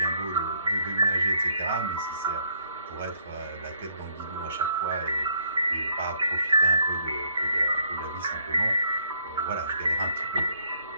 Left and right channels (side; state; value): both; inverted; correlation -0.68